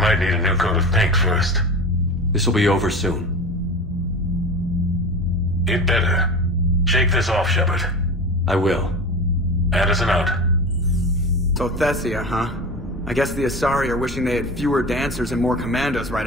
need a new coat of paint first. This'll be over soon. It better. Shake this off, Shepard. I will. Anderson out. So Thessia, huh? I guess the Asari are wishing they had fewer dancers and more commandos right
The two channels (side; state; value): both; normal; correlation 0.30